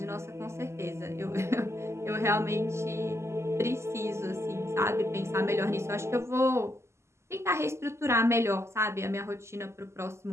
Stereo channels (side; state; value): left; late; 0.13 ms